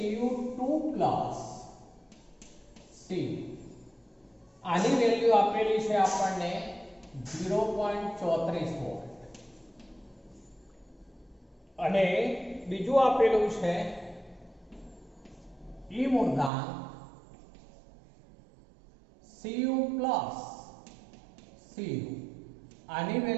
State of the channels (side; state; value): left; drops out; at 16.5 s